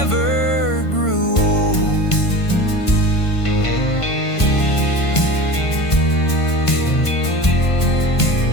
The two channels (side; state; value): right; late; 1.5 ms